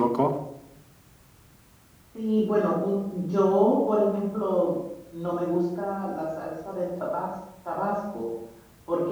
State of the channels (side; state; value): both; identical; correlation 1.00